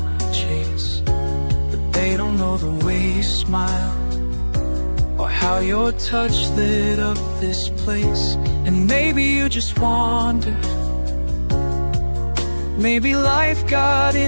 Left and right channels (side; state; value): both; inverted; correlation -1.00